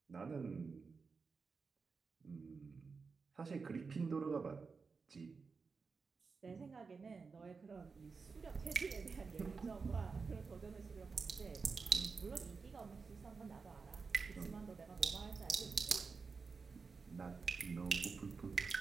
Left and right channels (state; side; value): quieter; left; 4.8 dB